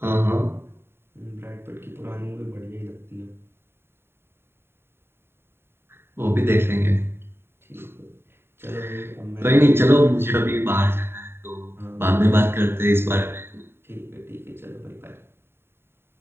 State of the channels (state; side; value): late; left; 0.11 ms